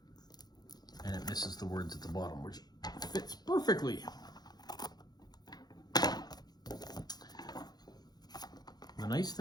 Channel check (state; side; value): late; right; 0.19 ms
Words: And it misses the words at the bottom, which fits perfectly. The nice